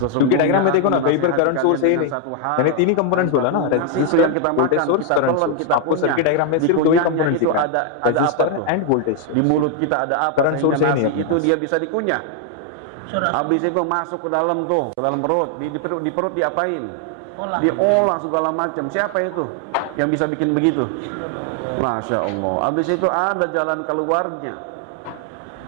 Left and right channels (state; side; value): different; both; correlation 0.00